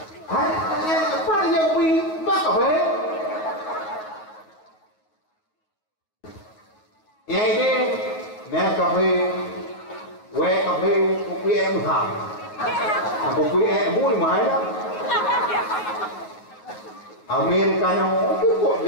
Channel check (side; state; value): right; late; 9.4 ms